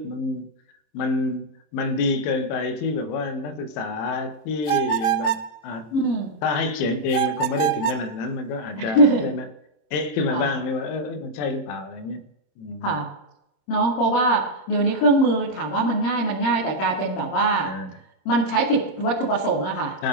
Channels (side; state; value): right; late; 26 ms